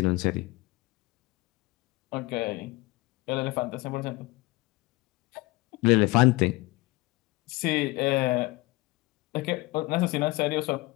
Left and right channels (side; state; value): right; quieter; 22.4 dB